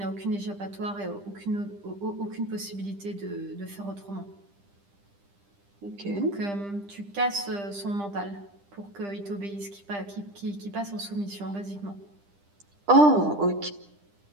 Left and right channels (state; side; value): late; left; 10 ms